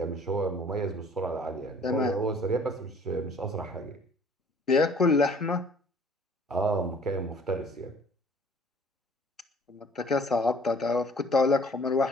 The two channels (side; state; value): both; normal; correlation 0.54